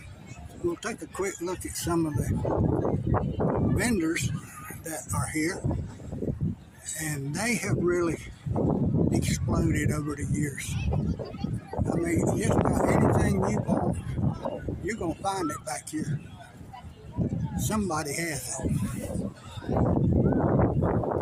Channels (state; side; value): identical; both; correlation 1.00